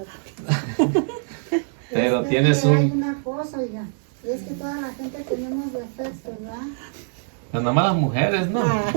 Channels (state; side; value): silent; left; 63 dB below the other